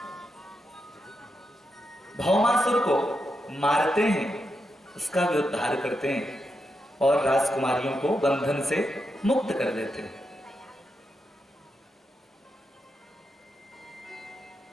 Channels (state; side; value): normal; both; correlation 0.85